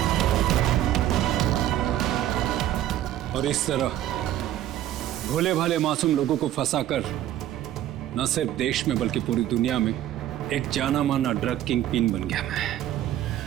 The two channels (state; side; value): quieter; left; 12.6 dB